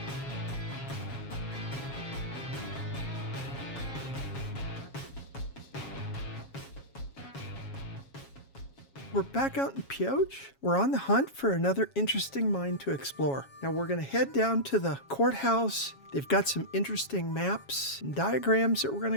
We're back out in Pioche. We're on the hunt for another interesting mine to explore. Now we're going to head down to the courthouse. They've got some interesting maps and diagrams that we're going to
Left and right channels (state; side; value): late; right; 7.3 ms